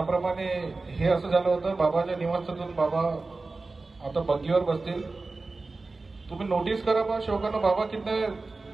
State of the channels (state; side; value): quieter; left; 3.6 dB